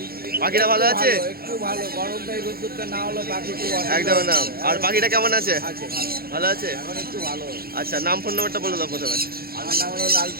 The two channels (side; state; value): left; late; 0.44 ms